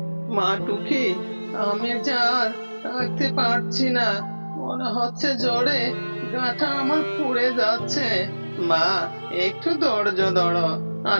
মা টুকি, আমি যে আর থাকতে পারছি না, মনে হচ্ছে জ্বরে গাটা আমার পুড়ে যাচ্ছে। মা, একটু ধৈর্য ধরো,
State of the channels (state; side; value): inverted; both; correlation -1.00